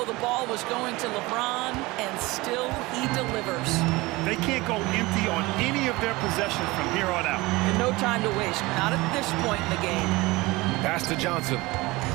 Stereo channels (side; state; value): left; quieter; 21.8 dB